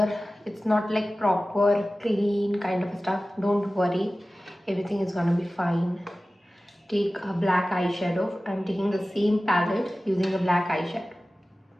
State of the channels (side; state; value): both; normal; correlation 0.96